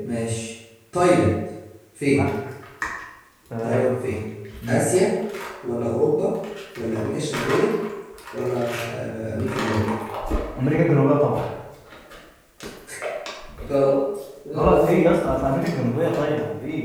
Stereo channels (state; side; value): identical; both; correlation 1.00